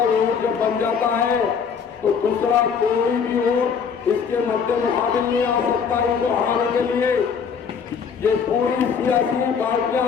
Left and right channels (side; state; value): right; quieter; 6.4 dB